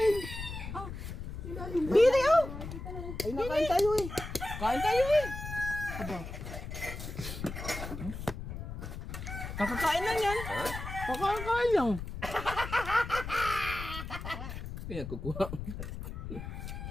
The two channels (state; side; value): noise; left; rumble, 8 dB below the sound